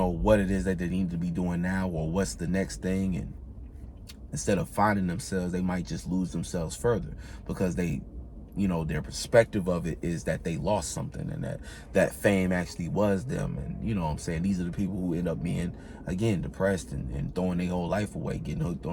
what it is that they need to be doing now, or what's the next thing, and instead of finding themselves, they might just lose themselves further, because they you know, their perspective of it is that they lost something, and that fame actually was them. And you know what I'm saying, these are the people who end up being, again, depressed and throwing their whole life away, getting hooked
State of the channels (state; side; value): identical; both; correlation 1.00